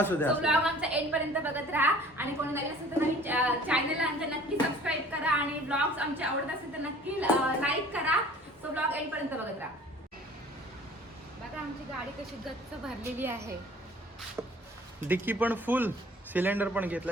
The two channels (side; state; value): both; normal; correlation 0.49